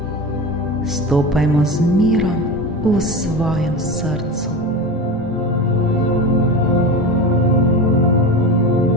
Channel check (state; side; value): normal; both; correlation 0.27